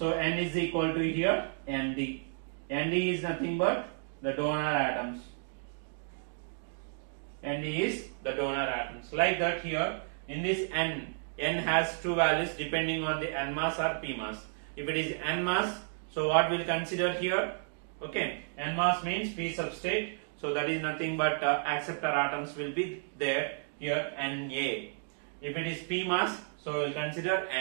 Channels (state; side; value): silent; left; digital silence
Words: N is equal to here Nd. Nd is nothing but the donor atoms. Nd is the donor atoms. Like that here in this N has two values depending on the N mass or P mass. If it is N mass, so what we'll consider here? Okay, N mass means P substrate. So that is nothing but acceptor atoms will be there here Na. If it is P mass, so we'll consider